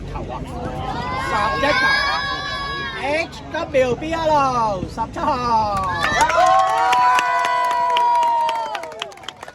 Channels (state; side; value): identical; both; correlation 1.00